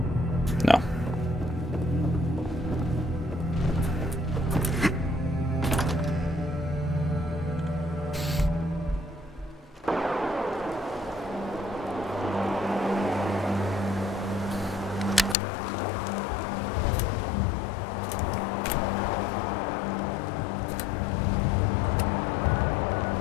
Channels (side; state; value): right; drops out; at 15.4 s